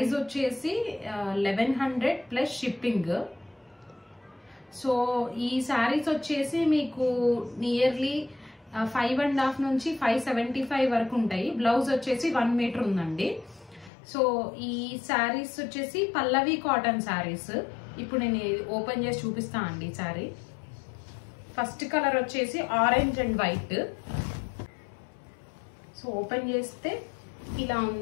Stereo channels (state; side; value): drops out; right; at 13.9 s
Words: వచ్చేసి 1100 ప్లస్ షిప్పింగ్. సో ఈ శారీస్ వచ్చేసి మీకు నియర్లీ 5.5 నుంచి 575 వరకు ఉంటాయి. బ్లౌజ్ వచ్చేసి 1 మీటర్ ఉందండి. సో ఈ శారీస్ వచ్చేసి పల్లవి కాటన్ శారీస్. ఇప్పుడు నేను ఓపెన్ చేసి చూపిస్తా అండి. శారీ ఫస్ట్ కలర్ వచ్చేసి orange and white. So open చేస్తే ఇలా